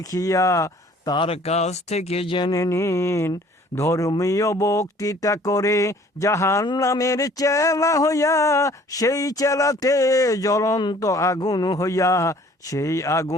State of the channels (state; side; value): normal; both; correlation 0.54